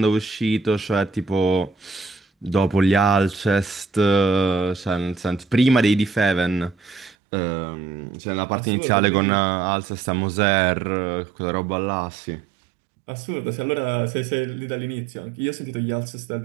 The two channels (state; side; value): drops out; left; at 7.2 s